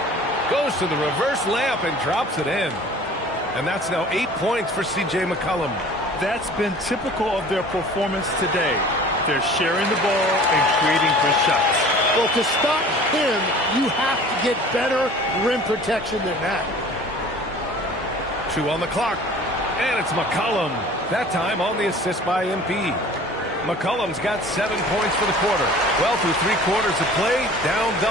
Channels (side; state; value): both; normal; correlation 0.46